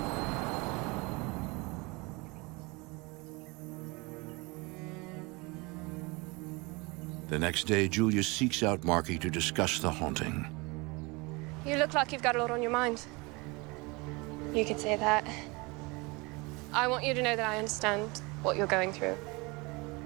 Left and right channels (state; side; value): quieter; left; 26.1 dB